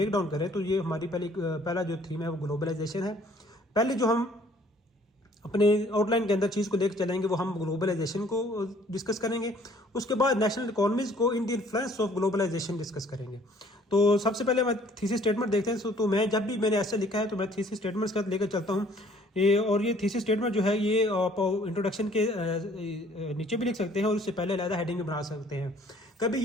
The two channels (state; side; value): normal; both; correlation 0.58